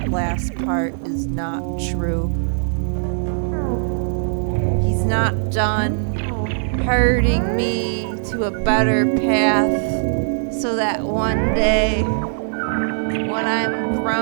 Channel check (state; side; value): silent; left; digital silence